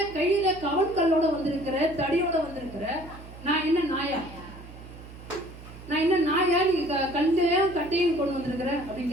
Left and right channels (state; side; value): noise; right; hum, 16 dB below the sound